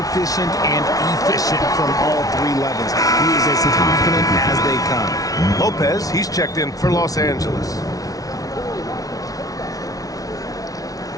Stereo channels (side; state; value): right; late; 0.18 ms